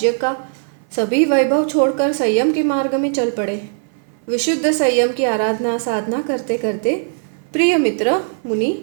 का सभी वैभव छोड़कर संयम के मार्ग में चल पड़े। विशुद्ध संयम की आराधना साधना करते करते प्रिय मित्र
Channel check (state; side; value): silent; left; 56 dB below the other